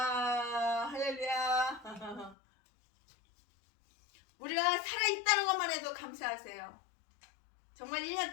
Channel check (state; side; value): drops out; right; at 2.4 s